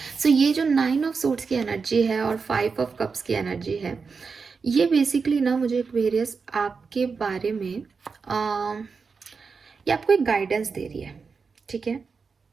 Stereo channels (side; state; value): left; quieter; 5.1 dB